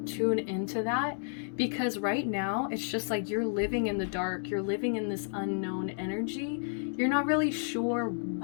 tune into that, because right now it's just like you're living in the dark. You're living in this unknown energy. You're not really sure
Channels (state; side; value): silent; right; digital silence